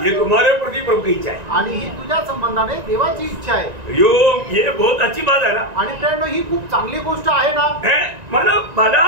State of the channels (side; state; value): left; late; 1.9 ms